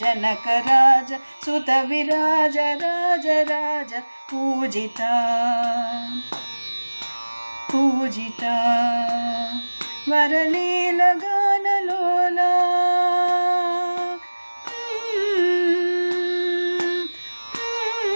జనకరాజ సుత విరాజ రాజ రాజ పూజిత పూజిత వరలీల గానలోలా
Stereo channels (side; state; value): both; inverted; correlation -1.00